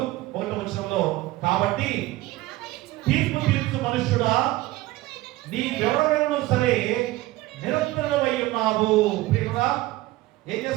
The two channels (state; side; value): quieter; left; 17.8 dB